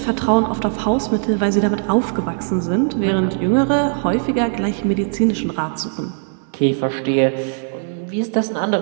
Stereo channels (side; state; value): left; silent; 66 dB below the other